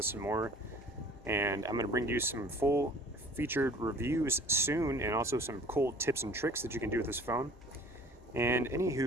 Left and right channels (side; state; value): both; normal; correlation 0.49